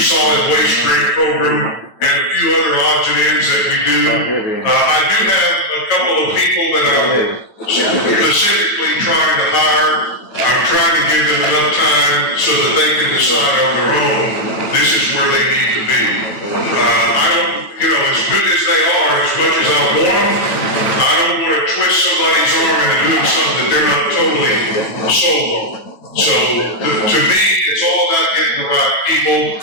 solid waste grant program, and a few other odds and ends that we do. I do have a couple of people that I'm specifically trying to hire. I'm trying to give them enough time so that they can decide on their own, this is where they need to be. I don't, as good as they are, as much as I want them, I don't want to twist somebody's arm into doing something that they're not totally sold on. So, to me, it's all about getting the right people,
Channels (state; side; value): late; right; 9.1 ms